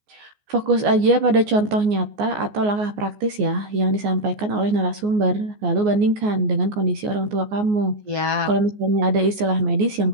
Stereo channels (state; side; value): late; left; 14 ms